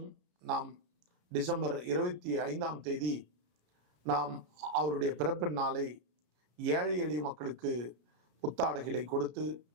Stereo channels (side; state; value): left; late; 33 ms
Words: நாம் டிசம்பர் 25ஆம் தேதி நாம் அவருடைய பிறப்பின் நாளை ஏழை எளிய மக்களுக்கு புத்தாடைகளை கொடுத்து,